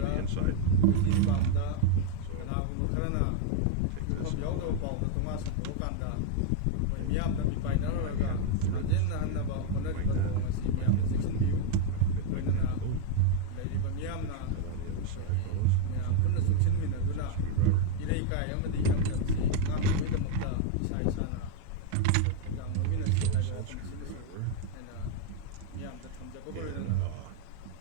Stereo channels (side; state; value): both; different; correlation 0.00